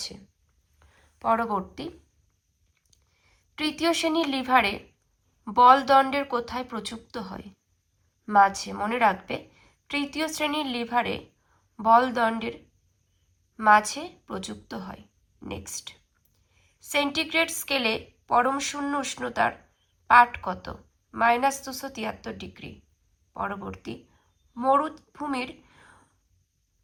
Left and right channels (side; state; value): both; identical; correlation 1.00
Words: পরবর্তী, তৃতীয় শ্রেণীর লিভারে বলদণ্ডের কোথায় প্রযুক্ত হয়? মাঝে। মনে রাখবে, তৃতীয় শ্রেণীর লিভারে বলদণ্ডের মাঝে প্রযুক্ত হয়। নেক্সট, সেন্টিগ্রেড স্কেলে পরম শূন্য উষ্ণতার পাঠ কত? -273 ডিগ্রি। পরবর্তী, মরুভূমির